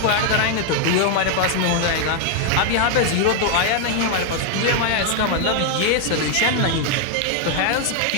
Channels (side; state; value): both; different; correlation 0.00